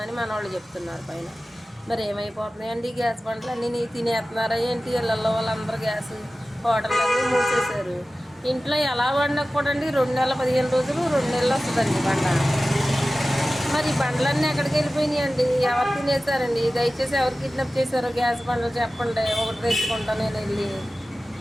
అని మన వాళ్ళు చెప్తున్నారు పైన. మరి ఏమైపోతున్నాయండి గ్యాస్ బండ్లు అన్నీ తినేస్తున్నారా ఏంటి? ఇళ్ళల్లో వాళ్ళందరూ గ్యాస్ హోటళ్ళన్నీ మూసేశారు. ఇంట్లో ఎలా వండకూడండి 2 నెలల 15 రోజులు 2 నెలలు వస్తుందండి బండ. మరి ఈ బండ్లన్నీ ఎక్కడికి వెళ్ళిపోయినాయండి? ఎవరు తినేసారండి? దయచేసి ఎవరు కిడ్నాప్ చేశారో గ్యాస్ బండ్లు చెప్పండి, ఒకటి తెచ్చుకుంటా నేను వెళ్ళి.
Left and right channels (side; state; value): both; normal; correlation 0.96